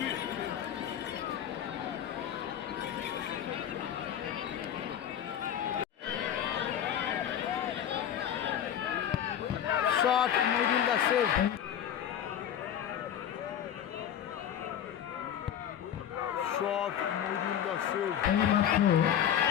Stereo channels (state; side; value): quieter; right; 9.9 dB